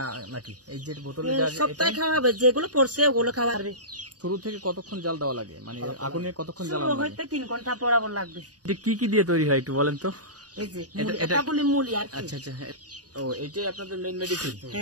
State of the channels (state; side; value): late; left; 0.68 ms